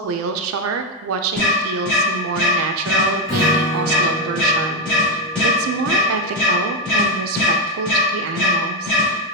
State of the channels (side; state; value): both; normal; correlation 0.06